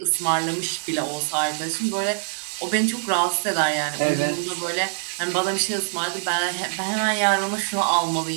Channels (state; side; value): silent; left; digital silence